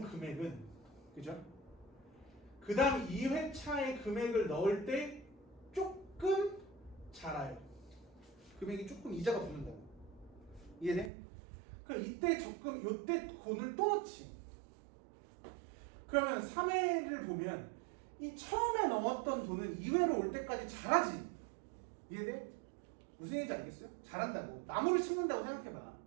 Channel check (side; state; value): left; drops out; at 11.1 s